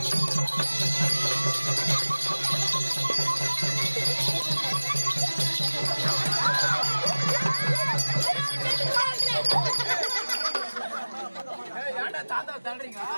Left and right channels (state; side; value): inverted; both; correlation -1.00